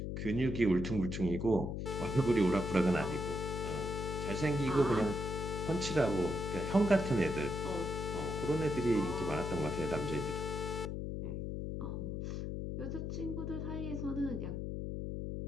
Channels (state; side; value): noise; left; hum, 3 dB below the sound